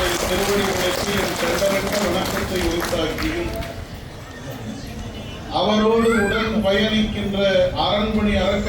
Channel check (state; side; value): identical; both; correlation 1.00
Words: திருவடிகளுக்கு என் தெண்டரிட்ட வணக்கத்தை உரித்தாக்கியும் அவரோடு உடன் பயணிக்கின்ற அரண்மனை